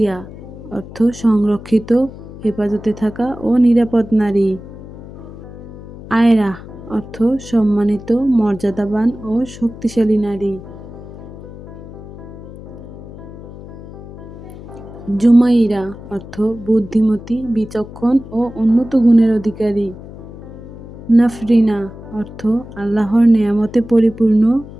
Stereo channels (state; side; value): noise; left; hum, 15 dB below the sound